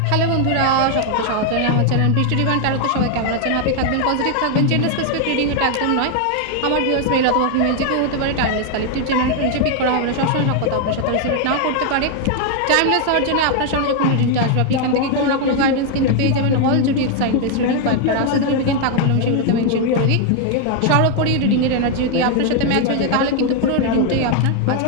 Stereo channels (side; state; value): both; different; correlation 0.00